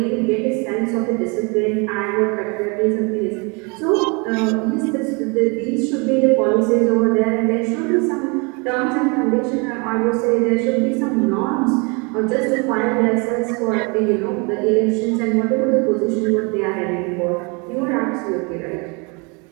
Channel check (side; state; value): left; quieter; 31.1 dB